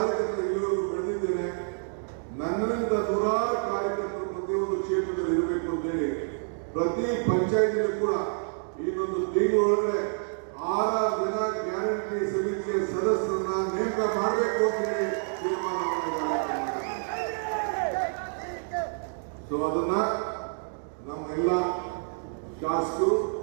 ಇಲ್ಲಿವರೆಗೂ ಬೆಳೆದಿದ್ದೇನೆ. ನನ್ನಿಂದ ನೂರಾರು ಕಾರ್ಯಕರ್ತರು ಪ್ರತಿಯೊಂದು ಕ್ಷೇತ್ರದಲ್ಲಿ ಇರಬೇಕು ಅಂತೇಳಿ ಪ್ರತಿ ಪಂಚಾಯತಿಗೂ ಕೂಡ ಇನ್ನೊಂದು ತಿಂಗಳೊಳಗಡೆ 6 ಜನ ಗ್ಯಾರಂಟಿ ಸಮಿತಿಯ ಸದಸ್ಯರನ್ನ ನೇಮಕ ಮಾಡಬೇಕು ಅಂತ ಹೇಳಿ ತೀರ್ಮಾನ ಮಾಡಿದ್ದಾರೆ. ಸೊ ಅದನ್ನ ನಮ್ಮೆಲ್ಲ ಶಾಸಕರು,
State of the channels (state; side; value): silent; left; digital silence